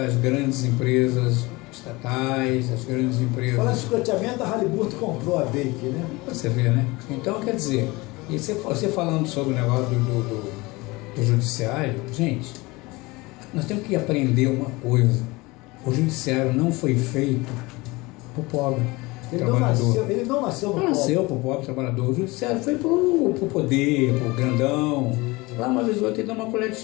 grandes empresas estatais, as grandes empresas. Falando em sucateamento, a Halliburton comprou a Bake, né? Você vê, né? Então, quer dizer, e você falando sobre o negócio do judiciário, gente, nós temos que aprender uma coisa. O judiciário não foi feito para o pobre trabalhador. Ele não nasceu no Não nasceu para o pobre trabalhador. O judiciário foi para o poder, para o grandão. Lá uma vez ou outra ele dá uma colher de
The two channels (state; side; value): quieter; right; 23.0 dB